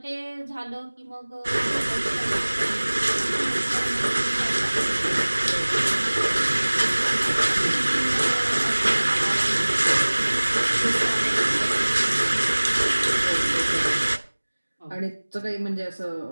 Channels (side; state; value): both; inverted; correlation -1.00